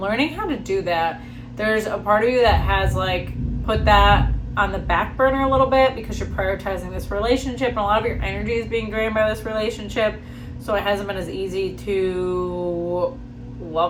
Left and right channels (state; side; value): identical; both; correlation 1.00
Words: how to do that. There's a part of you that has like put that on the back burner a little bit because you're prioritizing this relationship, and a lot of your energy is being drained by this relationship. So it hasn't been as easy to